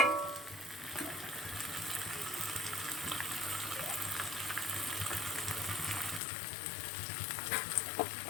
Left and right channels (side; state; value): right; drops out; at 6.2 s